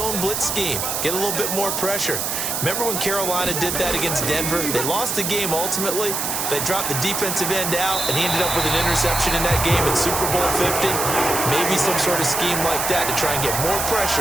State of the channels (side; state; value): right; noise; hiss, 1 dB below the sound